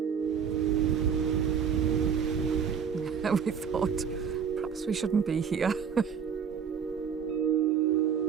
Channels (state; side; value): quieter; left; 7.2 dB